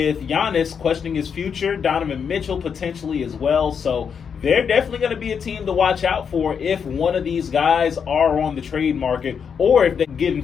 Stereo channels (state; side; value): quieter; right; 6.9 dB